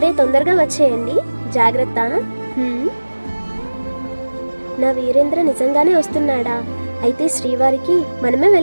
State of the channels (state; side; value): inverted; both; correlation -1.00